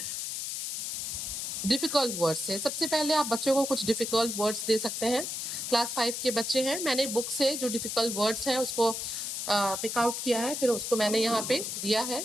difficult words से। सबसे पहले आप बच्चों को कुछ डिफ़िकल्ट वर्ड्स दे सकते हैं। क्लास 5 के बच्चे हैं, मैंने बुक से जो डिफ़िकल्ट वर्ड्स हैं उसको पिक आउट किया है, फिर उसको मैंने यहाँ पे दिया है।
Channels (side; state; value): left; noise; hiss, 4 dB below the sound